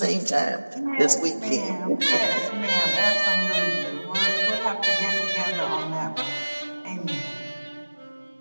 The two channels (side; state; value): both; inverted; correlation -1.00